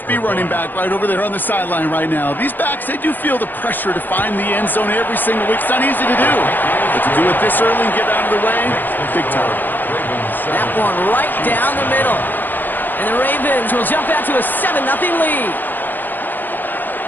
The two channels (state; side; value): late; right; 0.089 ms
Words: running back right over there on the sideline right now. These backs, they do feel the pressure to find the end zone every single week. It's not easy to do. But to do it this early and get out of the way, big time. That one right down the middle. And the Ravens will jump out to a 7-0 lead.